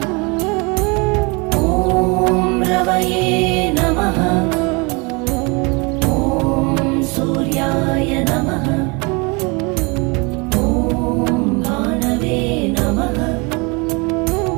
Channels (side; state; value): left; quieter; 29.1 dB